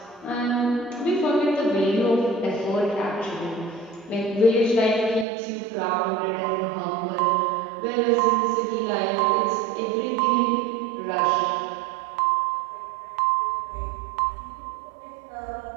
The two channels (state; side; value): drops out; left; at 5.2 s